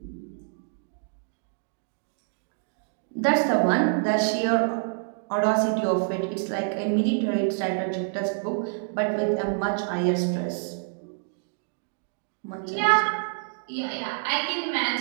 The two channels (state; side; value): silent; left; digital silence